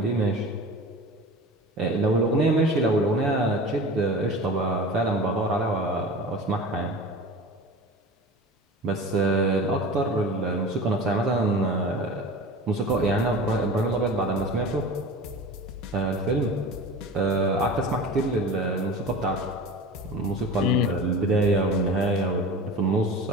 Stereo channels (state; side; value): normal; both; correlation 0.35